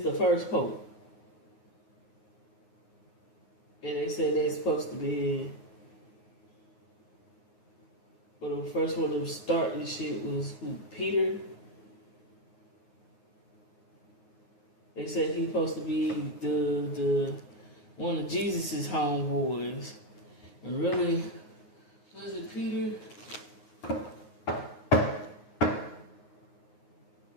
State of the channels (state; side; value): late; right; 9.5 ms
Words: the first Pope. And they said they're supposed to be. But the first one to start this shit was who? Peter. They said he's supposed to be the one of Jesus's homeboys. And really, was it Peter?